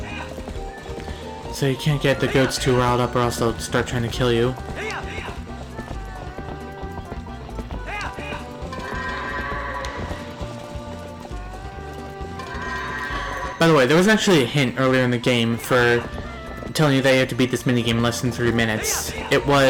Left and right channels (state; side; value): identical; both; correlation 1.00